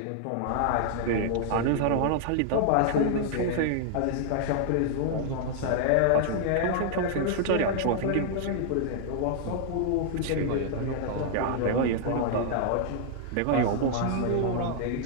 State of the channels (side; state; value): both; different; correlation -0.01